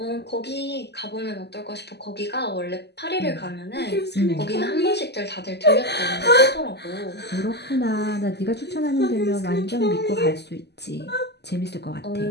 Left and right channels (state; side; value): late; right; 0.49 ms